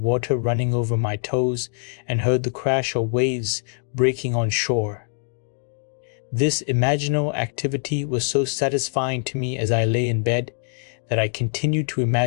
running over my toes and heard the crash of waves breaking on shore. This imaginal activity was so satisfying to me as I lay in bed that I continued to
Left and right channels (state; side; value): silent; right; 61 dB below the other